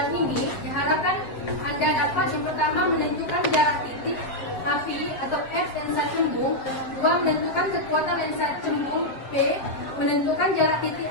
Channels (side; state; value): right; late; 7.6 ms